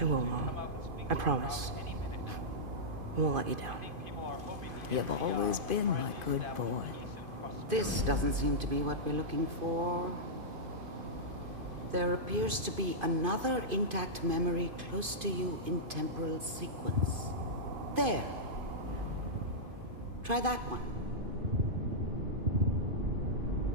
will, Mom. I promise. I won't let you down. You've always been my good boy. This doesn't seem to be what we're looking for. There appears to be another intact memory close to you in temporal sequence. There. Try that one.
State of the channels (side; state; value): left; late; 2.5 ms